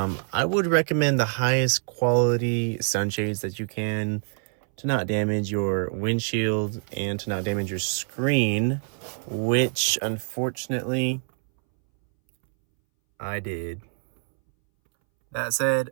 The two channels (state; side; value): silent; left; 61 dB below the other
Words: would recommend the highest quality sunshades that you can, to not damage your windshield and to not damage your screen, which unfortunately I did. That said,